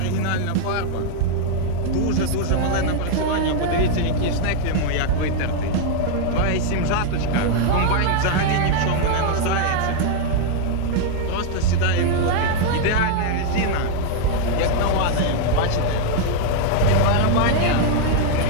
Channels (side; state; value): both; different; correlation 0.00